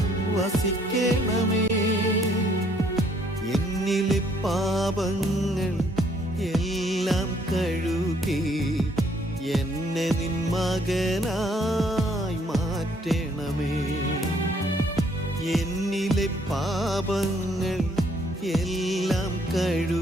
വസിക്കണമേ. എന്നിലെ പാപങ്ങൾ എല്ലാം കഴുകി എന്നെ നിൻ മകനായി മാറ്റണമേ. എന്നിലെ പാപങ്ങൾ എല്ലാം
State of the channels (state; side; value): normal; both; correlation 0.66